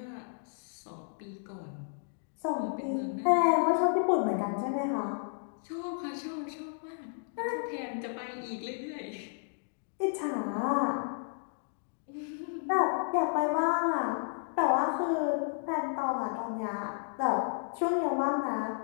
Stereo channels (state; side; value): silent; right; digital silence